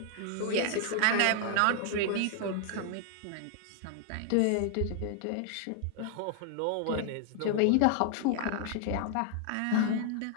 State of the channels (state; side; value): different; both; correlation 0.00